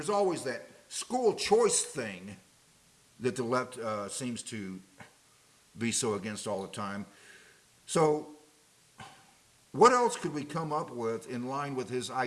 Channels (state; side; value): identical; both; correlation 1.00